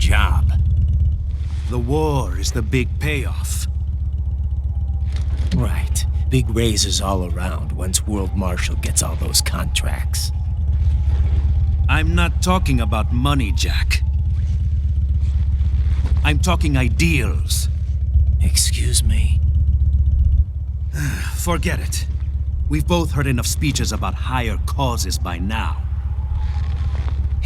The war is the big payoff. Right. Big raises all around once World Marshal gets all those contracts. I'm not talking about money, Jack. I'm talking ideals. Excuse me? Forget it. We've both heard enough speeches about higher causes by now.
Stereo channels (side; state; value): both; identical; correlation 1.00